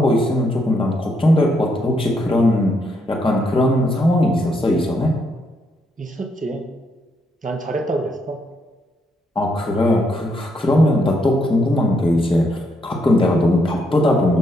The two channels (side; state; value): both; normal; correlation 0.76